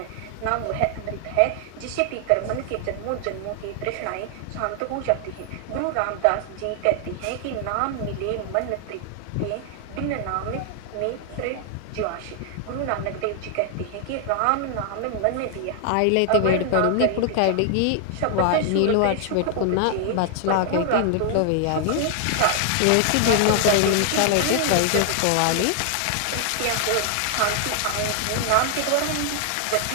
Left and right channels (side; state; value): both; different; correlation 0.00